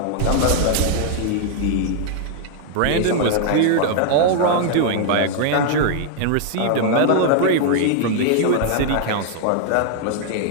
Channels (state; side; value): different; both; correlation 0.00